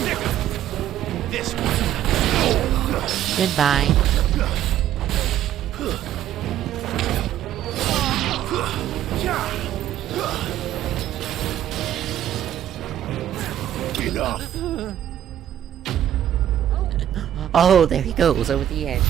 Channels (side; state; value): left; quieter; 11.4 dB